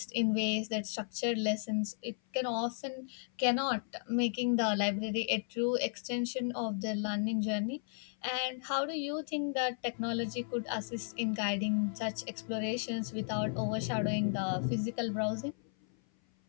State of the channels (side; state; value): right; silent; 55 dB below the other